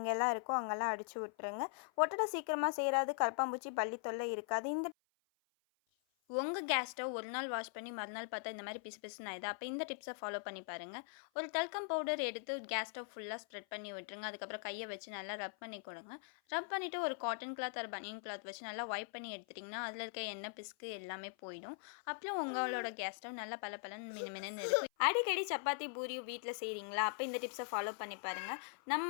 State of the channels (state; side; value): silent; right; 50 dB below the other